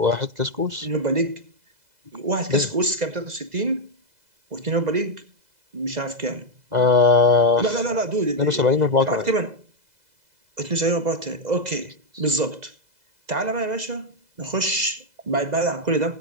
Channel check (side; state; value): left; late; 2.0 ms